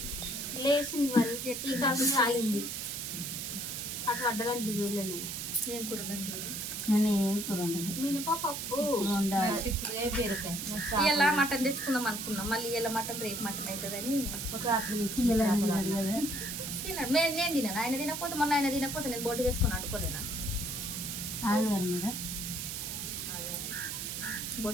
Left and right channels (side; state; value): right; noise; hiss, 5 dB below the sound